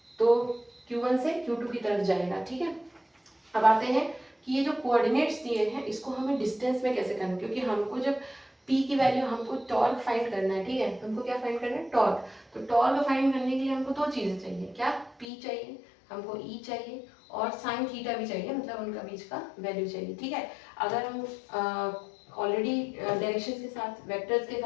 तो Q1 से Q2 की तरफ जाएगा। ठीक है, अब आते हैं कि ये जो कोऑर्डिनेट्स दिए हैं इसको हमें डिस्टेंस में कैसे करना है, क्योंकि हमको जब P की वैल्यू, हमको टॉर्क फाइंड करना है। ठीक है, हमको क्या फाइंड करना है, टॉर्क। तो टॉर्क फाइंड करने के लिए हमको दो चीजें चाहिए, क्या, P चाहिए, हमको E चाहिए, और साइन थीटा भी चाहिए, मतलब उनका बीच का वैल्यू चाहिए। ठीक है, अगर हम ऑलरेडी डायरेक्शंस के साथ, वेक्टर्स के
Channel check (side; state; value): right; drops out; at 15.2 s